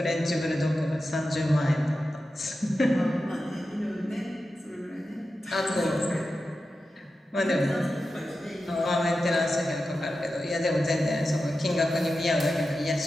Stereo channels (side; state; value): both; normal; correlation 0.92